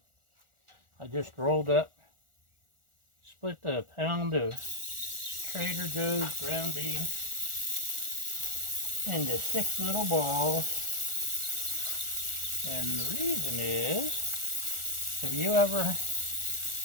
I just rolled up, split a pound of Trader Joe's ground beef into 6 little balls. And the reason is, have you ever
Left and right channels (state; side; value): late; left; 1.4 ms